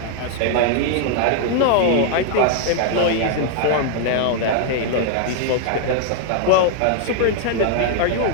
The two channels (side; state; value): both; different; correlation 0.00